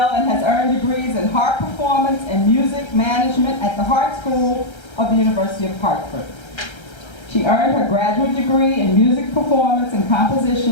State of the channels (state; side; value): late; right; 1.3 ms